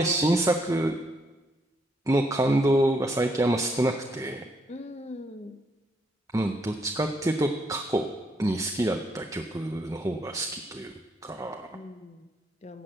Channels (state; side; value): normal; both; correlation 0.74